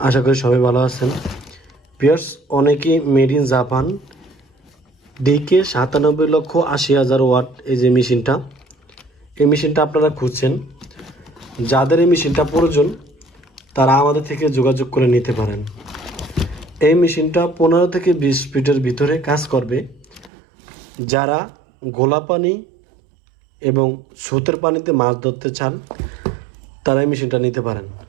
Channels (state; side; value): drops out; left; at 20.3 s